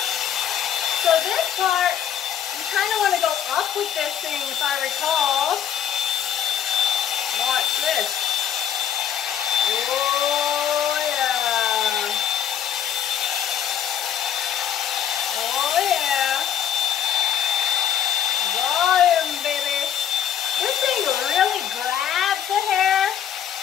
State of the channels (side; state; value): right; quieter; 9.5 dB